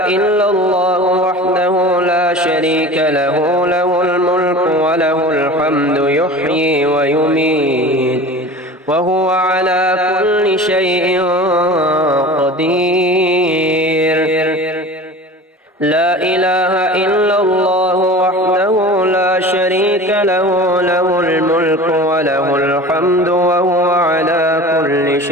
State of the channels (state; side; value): normal; both; correlation 0.37